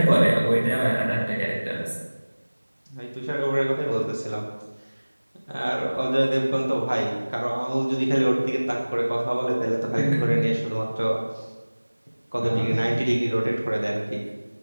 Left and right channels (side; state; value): both; inverted; correlation -1.00